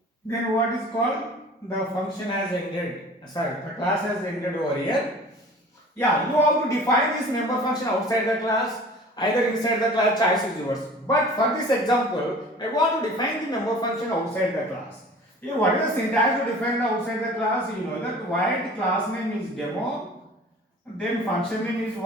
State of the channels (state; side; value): normal; both; correlation 0.44